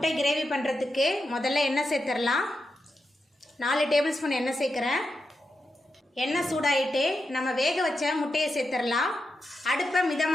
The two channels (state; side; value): normal; both; correlation 0.87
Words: கிரேவி பண்ணுறதுக்கு முதல்ல எண்ணெய் சேர்த்துடலாம். 4 டேபிள் ஸ்பூன் எண்ணெய் சேர்க்குறேன். எண்ணெய் சூடாயிட்டு நம்ம வேக வச்ச முட்டையை சேர்த்துடலாம். அடுப்பை